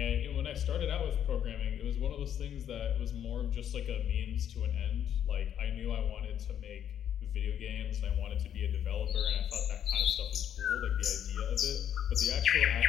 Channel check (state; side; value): quieter; right; 9.7 dB